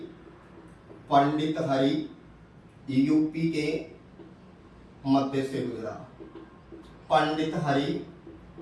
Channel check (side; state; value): both; identical; correlation 1.00